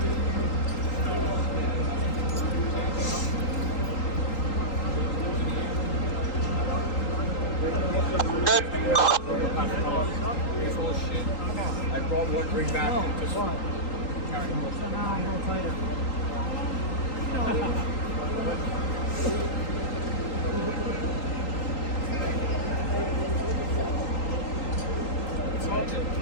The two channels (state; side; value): late; right; 3.8 ms